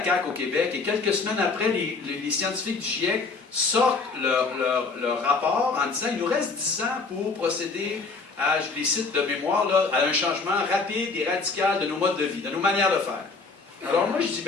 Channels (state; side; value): quieter; right; 4.2 dB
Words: CAQ au Québec, et quelques semaines après, les scientifiques du GIEC sortent leur rapport en disant il nous reste 10 ans pour procéder à, je les cite de mémoire, là, à un changement rapide et radical de nos modes de vie, de nos manières de faire. Alors moi, je dis,